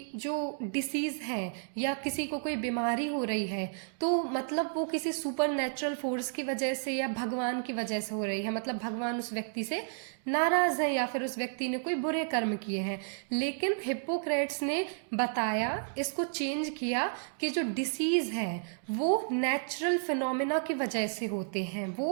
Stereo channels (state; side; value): silent; left; digital silence